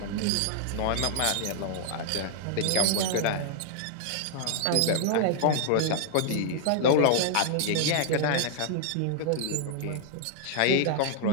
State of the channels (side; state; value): both; different; correlation 0.00